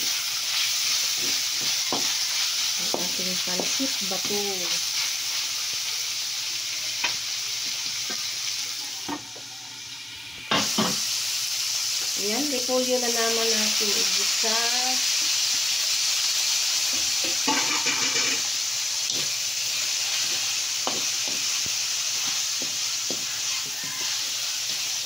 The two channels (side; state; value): both; normal; correlation 0.96